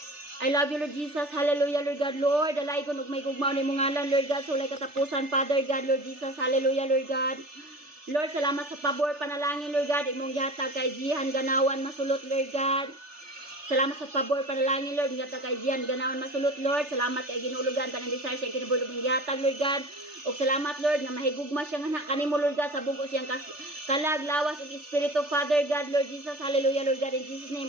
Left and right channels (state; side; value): late; left; 3.4 ms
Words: I love you, Lord Jesus. Hallelujah, Lord God. Lord, alay ko may gugmaw ni mong ngalan, Lord God. Sulay katapusan, Father God, Lord Jesus. Hallelujah, Lord God. Lord, salamat sa pabor, panalangin, Lord God. Imong yatag kay Jihan Ganawan masulot, Lord God. Salamat sa pabor, panalangin, Lord. Imong yatag kay Jihan Ganawan masulot, Lord. Salamat kay ginulugan, tanang desire siya kinabulog ng yatag, Lord God. O salamat, Lord, na mahigugma siya nga kanimo, Lord God, sa bugos siyang kalag, lawas, ug Espiritu, Father God, Lord Jesus, hallelujah, Lord God, in Jesus' name,